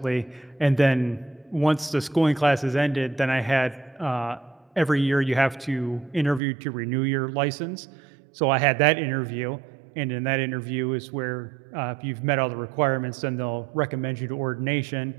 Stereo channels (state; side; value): drops out; left; at 6.4 s